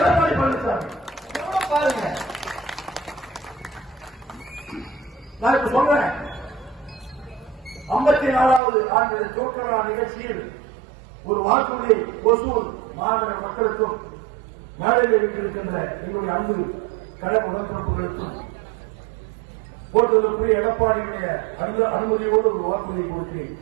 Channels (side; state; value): left; drops out; at 8.6 s